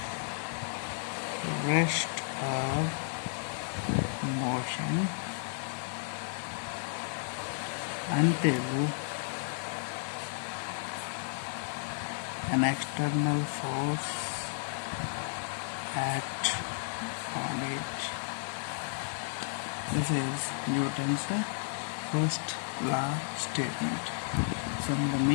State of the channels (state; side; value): silent; right; digital silence